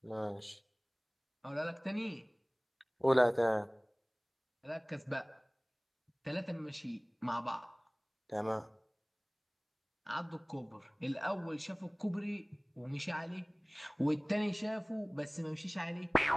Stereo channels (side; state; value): both; identical; correlation 1.00